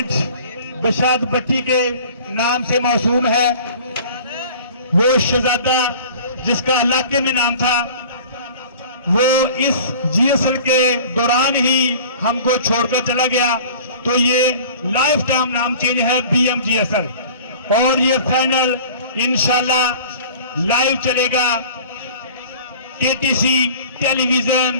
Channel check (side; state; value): both; inverted; correlation -0.45